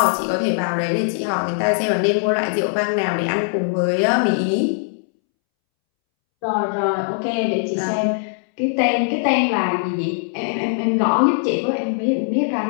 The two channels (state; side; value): silent; right; 65 dB below the other